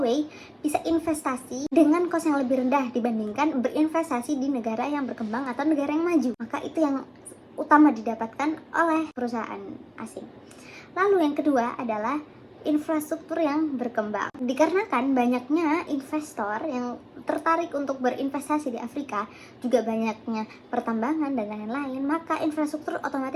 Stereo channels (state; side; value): identical; both; correlation 1.00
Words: bisa investasi dengan kos yang lebih rendah dibandingkan berinvestasi di negara yang berkembang atau negara yang maju. Maka itu yang utama didapatkan oleh perusahaan asing. Lalu yang kedua adalah infrastruktur yang berkembang. Dikarenakan banyaknya investor yang tertarik untuk berinvestasi di Afrika, juga banyaknya pertambangan dan lain-lain, maka infrastruktur